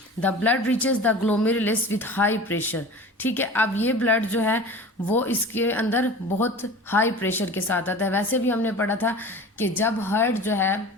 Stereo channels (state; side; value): normal; both; correlation 0.37